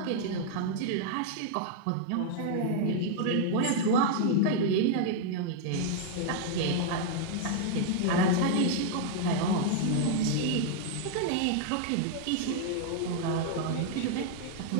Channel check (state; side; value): different; both; correlation -0.01